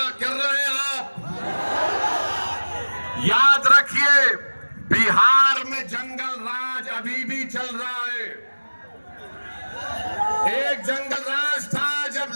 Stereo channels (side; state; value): both; inverted; correlation -1.00